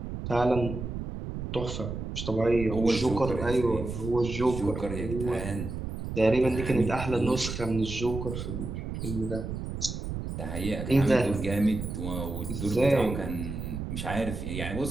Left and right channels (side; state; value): right; noise; rumble, 6 dB below the sound